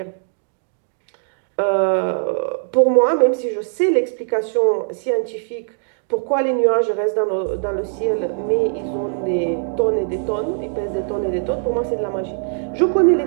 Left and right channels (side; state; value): left; silent; digital silence